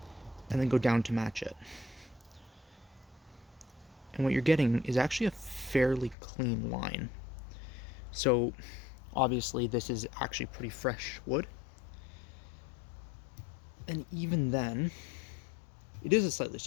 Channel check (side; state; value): right; drops out; at 6.2 s